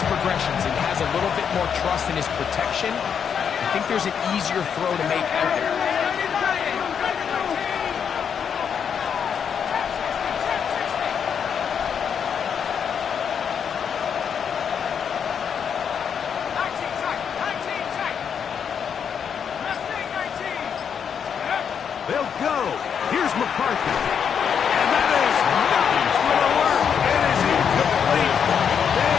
progressions and has a little bit more trust in his protection, I think there's an easier throw to make out there. They'll go. Here's McCarthy. And that is not going to work. It is incomplete. They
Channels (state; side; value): quieter; right; 7.4 dB